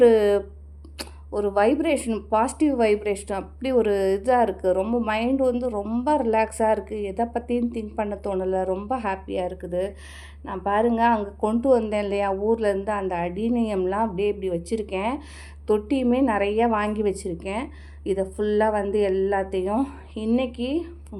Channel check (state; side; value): identical; both; correlation 1.00